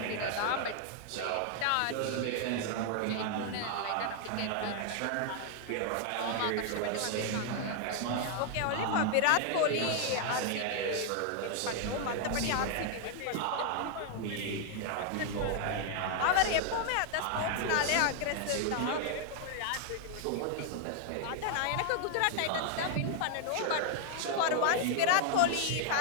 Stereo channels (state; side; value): different; both; correlation 0.00